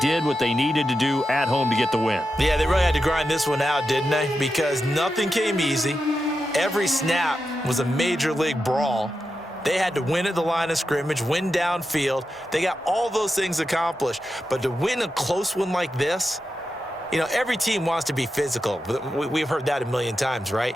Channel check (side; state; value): both; normal; correlation 0.89